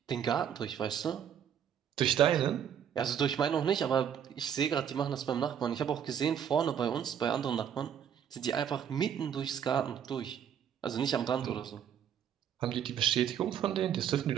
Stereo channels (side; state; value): left; quieter; 8.8 dB